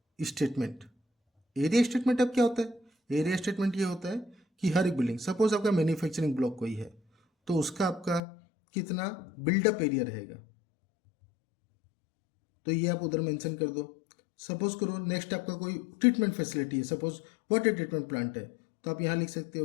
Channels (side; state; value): right; drops out; at 8.2 s